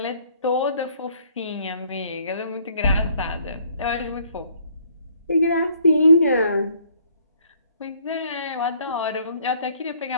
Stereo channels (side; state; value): both; inverted; correlation -0.63